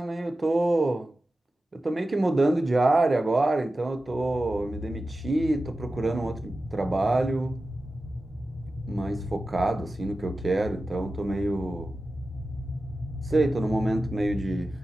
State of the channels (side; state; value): both; normal; correlation 0.94